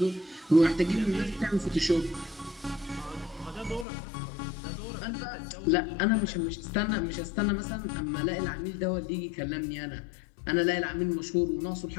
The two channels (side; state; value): right; drops out; at 3.9 s